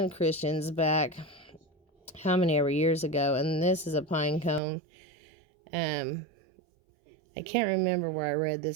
Christians back how many ever years ago. And this is a pine cone. I can't remember where I read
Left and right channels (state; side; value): drops out; left; at 4.6 s